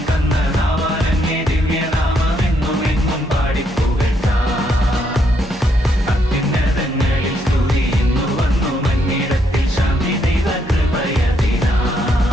തന്ന നാവാലങ്ങേ ദിവ്യനാമമെന്നുമെന്നും പാടിപ്പുകഴ്ത്താം. അത്യുന്നതങ്ങളിൽ സ്തുതി ഇന്നു വന്നു മന്നിടത്തിൽ ശാന്തി ദൈവകൃപയതിനാൽ.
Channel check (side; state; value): both; normal; correlation 0.74